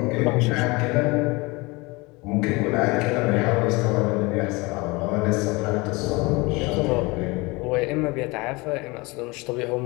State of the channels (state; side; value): quieter; right; 24.8 dB